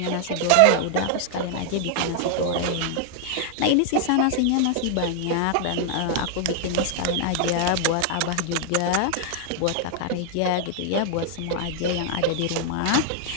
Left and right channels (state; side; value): different; both; correlation 0.00